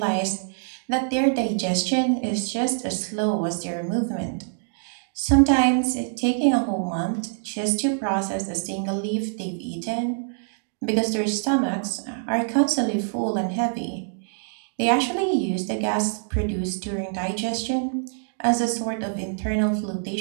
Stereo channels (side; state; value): left; silent; digital silence